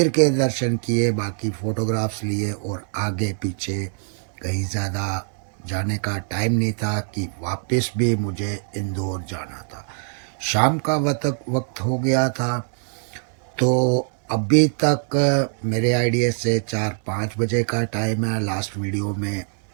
के दर्शन किए, बाकी फ़ोटोग्राफ्स लिए और आगे पीछे कहीं ज़्यादा जाने का टाइम नहीं था कि वापस भी मुझे इंदौर जाना था। शाम का वक्त हो गया था। तो अभी तक मेरे आइडिया से 4-5 बजे का टाइम है। लास्ट वीडियो में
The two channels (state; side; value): silent; left; 58 dB below the other